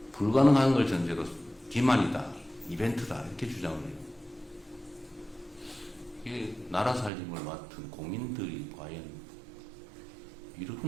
불가능한 걸 전제로 기만이다, 이벤트다 이렇게 주장을 해요. 이게 나라 살림을 맡은 공인들이 과연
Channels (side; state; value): left; drops out; at 7.1 s